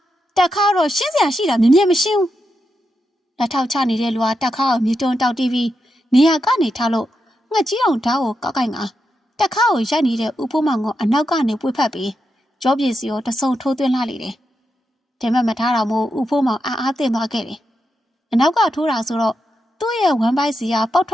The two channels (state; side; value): normal; both; correlation 0.86